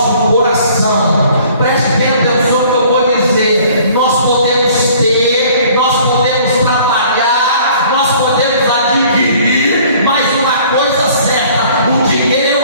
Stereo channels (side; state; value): both; inverted; correlation -0.54